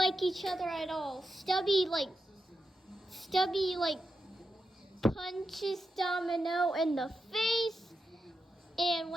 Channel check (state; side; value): normal; both; correlation 0.88